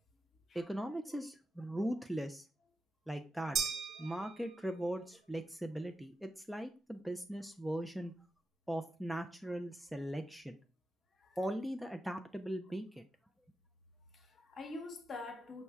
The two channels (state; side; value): normal; both; correlation 0.87